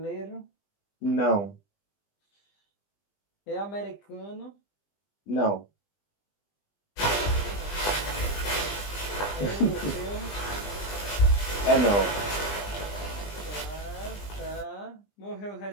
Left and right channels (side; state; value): right; late; 20 ms